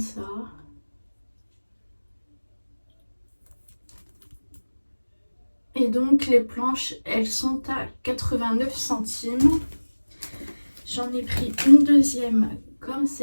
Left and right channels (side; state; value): both; inverted; correlation -1.00